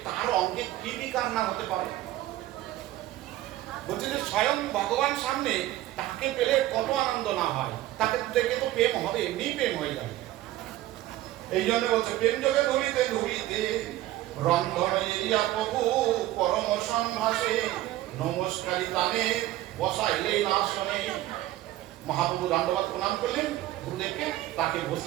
তার অঙ্গে কি বিকার না হতে পারে? বলছে যে স্বয়ং ভগবান সামনে তাকে পেলে কত আনন্দ না হয়, তাকে দেখে তো প্রেম হবে, এমনি প্রেম হয়ে যাবে। এই জন্য বলছে প্রেম যোগে ধরিতে ধরিতে রন্ধন এরিয়া প্রভু পরম সম্ভাসে, নমস্কারী তানে বসাইলে না শোনে। মহাপ্রভু দণ্ডবাদ প্রণাম করলেন গুরুদেবকে, তাকে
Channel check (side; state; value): left; quieter; 15.2 dB